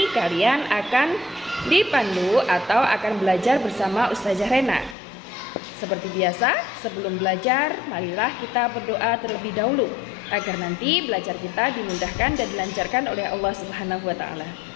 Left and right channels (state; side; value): drops out; right; at 5.0 s